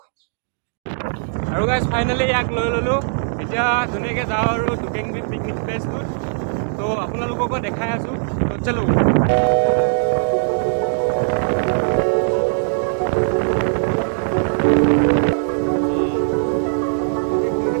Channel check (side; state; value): left; silent; digital silence